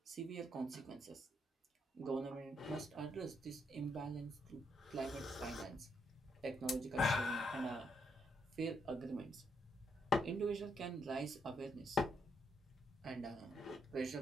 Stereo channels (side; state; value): both; normal; correlation 0.77